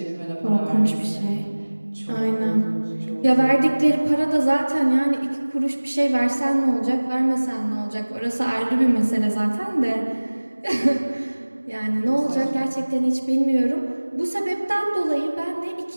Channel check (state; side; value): inverted; both; correlation -1.00